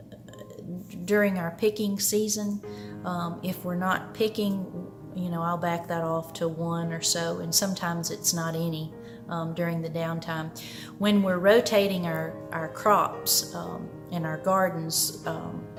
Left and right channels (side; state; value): both; identical; correlation 1.00